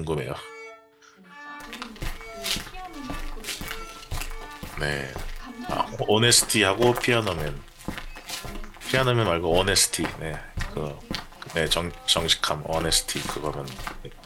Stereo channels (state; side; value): identical; both; correlation 1.00